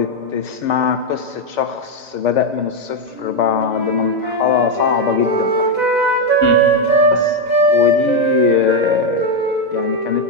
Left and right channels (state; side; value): late; left; 2.0 ms